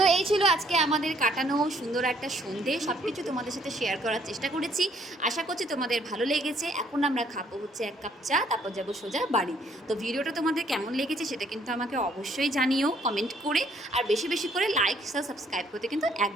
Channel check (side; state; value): both; normal; correlation 0.65